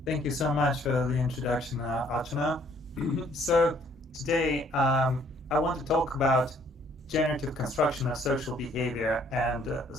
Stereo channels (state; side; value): normal; both; correlation 0.62